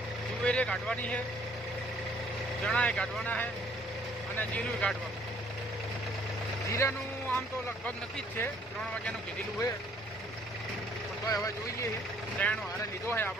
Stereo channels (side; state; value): both; normal; correlation 0.61